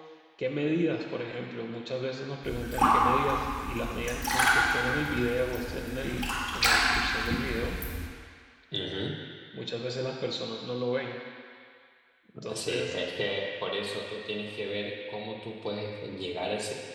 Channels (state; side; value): identical; both; correlation 1.00